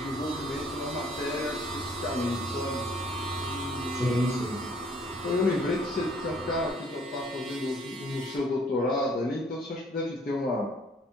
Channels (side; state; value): both; normal; correlation 0.60